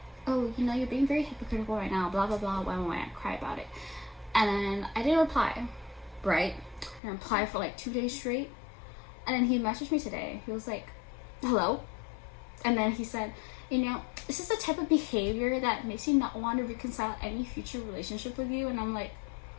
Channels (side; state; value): right; drops out; at 7.0 s